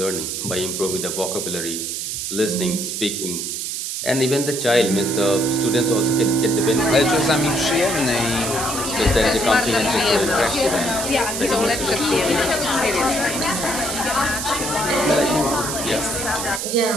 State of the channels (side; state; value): right; noise; hiss, 4 dB below the sound